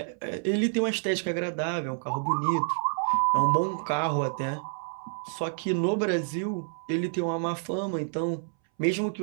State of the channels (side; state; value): left; silent; 59 dB below the other